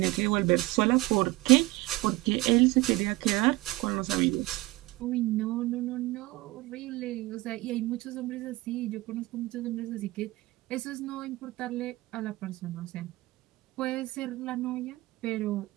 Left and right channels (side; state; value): left; quieter; 20.3 dB